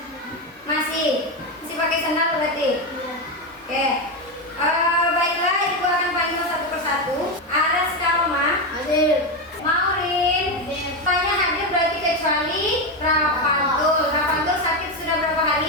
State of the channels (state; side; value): normal; both; correlation 0.11